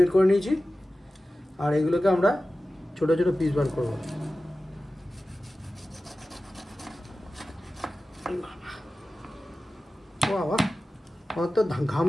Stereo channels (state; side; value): normal; both; correlation 0.95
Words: করে নিয়েছি। আর এগুলোকে আমরা ছোট ছোট পিস বার করবো। বাবা, আমার তো ঘাম